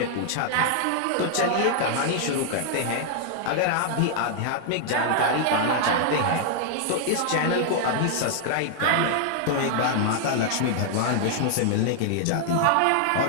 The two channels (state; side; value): different; both; correlation -0.01